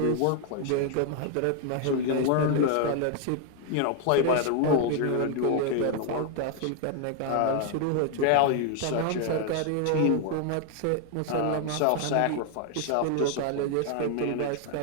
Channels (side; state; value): both; different; correlation 0.00